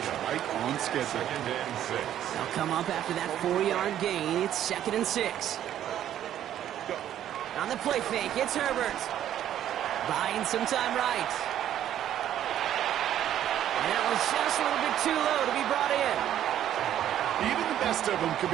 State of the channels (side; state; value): left; quieter; 11.2 dB